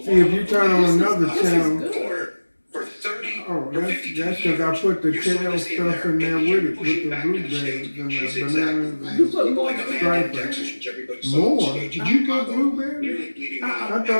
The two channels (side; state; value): both; inverted; correlation -1.00